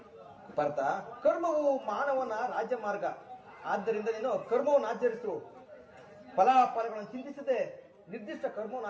ಪಾರ್ಥ, ಕರ್ಮವು ಮಾನವನ ರಾಜ್ಯ ಮಾರ್ಗ. ಆದ್ದರಿಂದ ನೀನು ಕರ್ಮವನ್ನು ಆಚರಿಸು. ಫಲಾಫಲಗಳನ್ನು ಚಿಂತಿಸದೆ ನಿರ್ದಿಷ್ಟ ಕರ್ಮವನ್ನು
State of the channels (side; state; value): both; identical; correlation 1.00